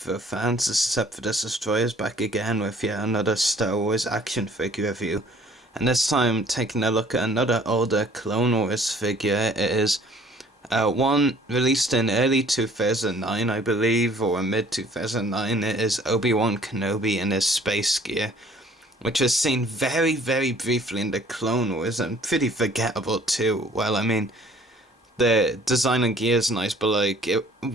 fans, this is Sephiroth Destroyers back again with yet another Star Wars action figure review. And this time taking a look at another older Clone Wars figure. It is one released in early 2009 I believe, or mid 2009. It is Obi-Wan Kenobi in his space gear, which was seen very briefly in the Clone Wars and pretty forgettable too. Well, I mean, the design and gear is nice, but like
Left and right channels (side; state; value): both; normal; correlation 0.55